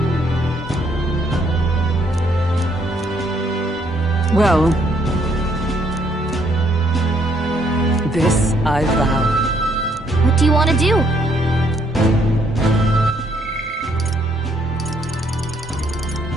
Well, this I vow. What do you want to do?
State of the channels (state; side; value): normal; both; correlation 0.69